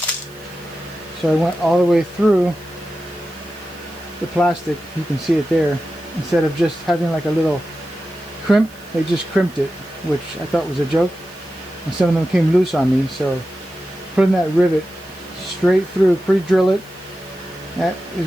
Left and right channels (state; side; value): noise; right; hiss, 25 dB below the sound